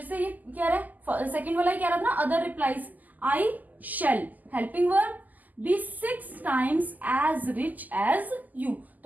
से ये क्या रहा है, सेकेंड वाला ही क्या रहा था ना, other replies. I shall helping verb be 6 times as rich as you,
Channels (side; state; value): left; late; 0.082 ms